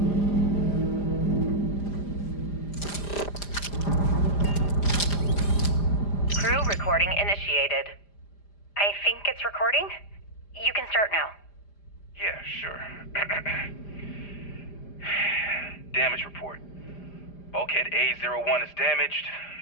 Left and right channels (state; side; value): late; right; 5.0 ms